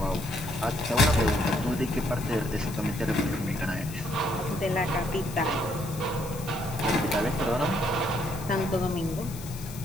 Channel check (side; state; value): left; noise; hiss, 15 dB below the sound